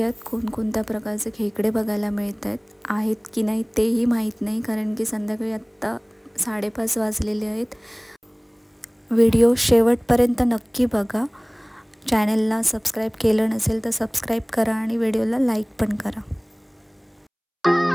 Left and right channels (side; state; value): both; identical; correlation 1.00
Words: कोणकोणत्या प्रकारचे खेकडे बघायला मिळत आहेत की नाही तेही माहीत नाही, कारण की संध्याकाळी आत्ता 5:30 वाजलेले आहेत। व्हिडिओ शेवटपर्यंत नक्की बघा। चॅनलला सबस्क्राईब केलं नसेल तर सबस्क्राईब करा आणि व्हिडिओला लाईक पण करा।